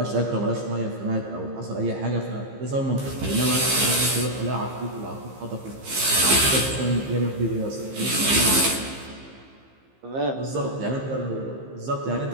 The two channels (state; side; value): late; left; 15 ms